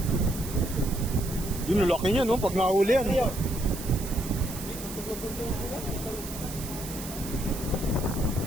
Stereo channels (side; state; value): right; noise; hiss, 11 dB below the sound